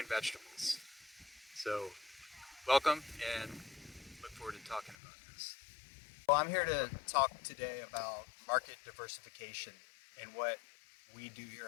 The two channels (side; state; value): right; drops out; at 5.0 s